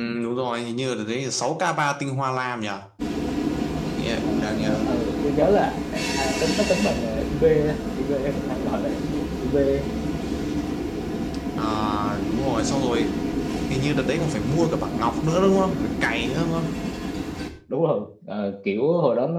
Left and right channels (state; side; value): identical; both; correlation 1.00